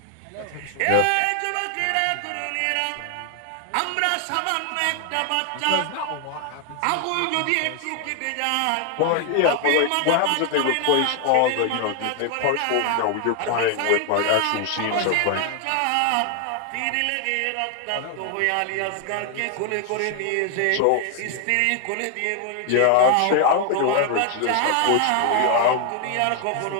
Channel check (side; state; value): both; different; correlation 0.00